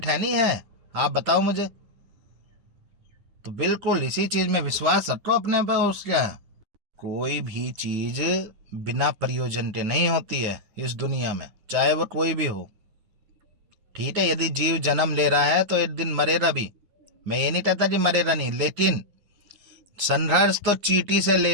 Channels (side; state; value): left; late; 9.7 ms